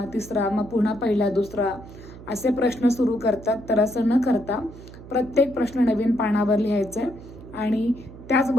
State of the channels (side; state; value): right; noise; hum, 16 dB below the sound